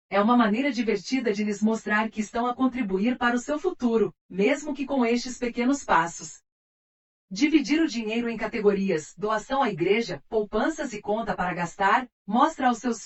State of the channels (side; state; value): both; identical; correlation 1.00